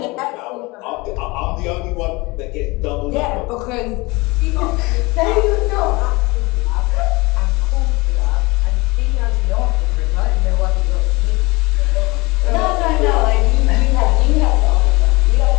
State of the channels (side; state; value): right; quieter; 24.0 dB